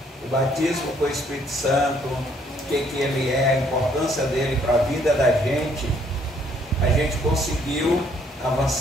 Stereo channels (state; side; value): normal; both; correlation 0.66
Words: o batismo com o Espírito Santo, o que ele é, a importância dele para a vida da gente, a gente conseguiu